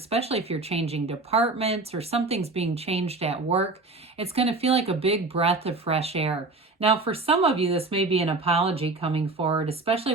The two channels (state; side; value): quieter; left; 3.4 dB